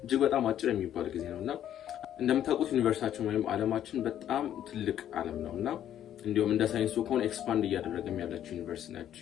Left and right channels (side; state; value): right; quieter; 10.9 dB